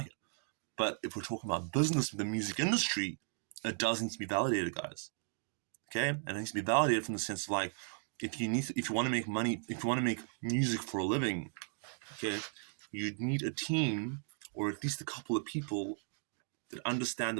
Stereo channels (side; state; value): left; silent; 54 dB below the other